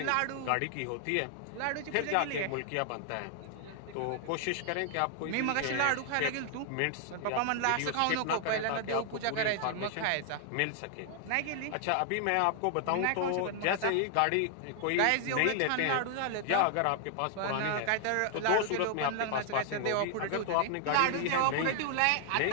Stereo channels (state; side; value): different; both; correlation 0.00